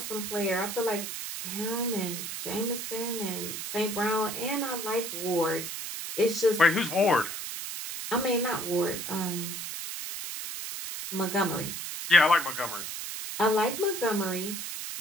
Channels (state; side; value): noise; right; hiss, 6 dB below the sound